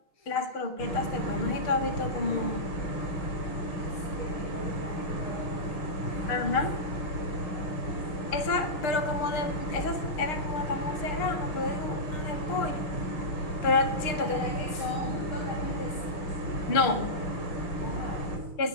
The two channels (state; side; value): late; right; 6.6 ms